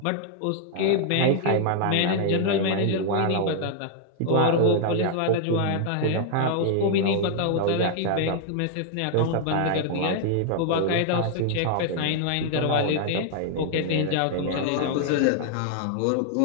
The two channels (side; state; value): both; different; correlation 0.00